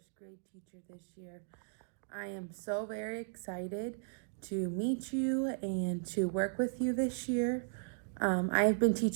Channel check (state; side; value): silent; left; digital silence